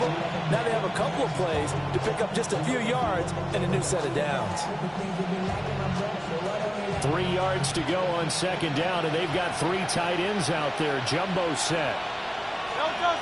Now they have a couple of plays to pick up just a few yards and a new set of downs. 3 yards to go on second down, and they've got 3 tight ends out there. Jumbo set.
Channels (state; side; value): identical; both; correlation 1.00